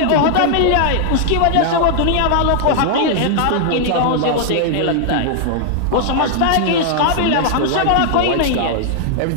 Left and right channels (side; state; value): both; different; correlation 0.00